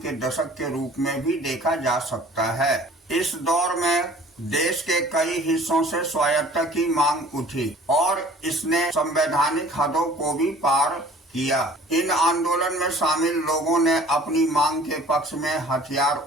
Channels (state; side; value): normal; both; correlation 0.50